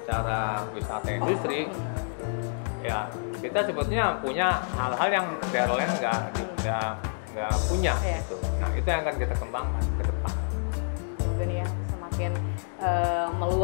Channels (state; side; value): silent; right; 58 dB below the other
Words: wisata industri, ya kita sebetulnya punya hal-hal yang daerah lain nggak punya gitu. Nah itu yang akan kita kembangkan ke depan. Ini ya semakin